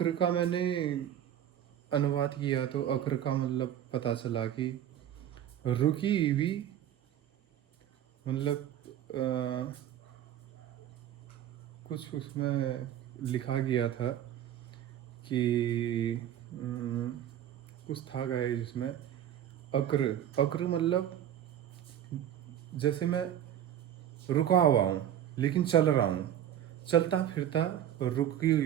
का मैंने अनुवाद किया तो अक्र का मतलब पता चला कि रुकी हुई, मतलब कुछ उसमें लिखा गया था कि कुछ था गाइस जिसमें अक्र अक्र मतलब जैसे मैं रुका हुआ हूँ लेकिन चल रहा हूँ, चलता फिरता रुकी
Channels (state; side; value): quieter; left; 10.8 dB